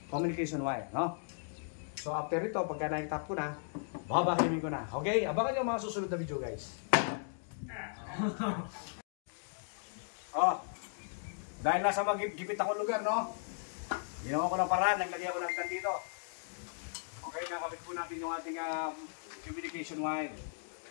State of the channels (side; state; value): right; silent; digital silence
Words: communication wire, no? So after ito, pagka na-tap ko na, babakimin ko na. Okay? Abangan nyo mga susunod na video, guys. Oh. Dahil nasa magigipit akong lugar, no? Ginawa ko ng paraan, naglagay ako ng dito. Okay, nakabit po natin yung ating communication wire.